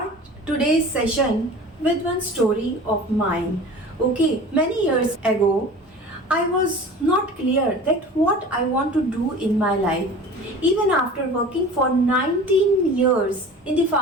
today's session with one story of mine. Okay, many years ago, I was not clear that what I want to do in my life. Even after working for 19 years in the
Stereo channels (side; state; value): both; normal; correlation 0.39